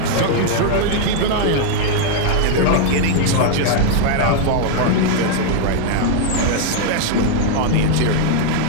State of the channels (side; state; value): both; different; correlation 0.00